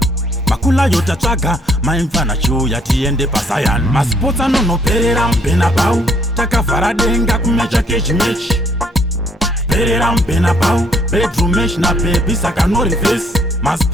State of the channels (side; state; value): both; normal; correlation 0.66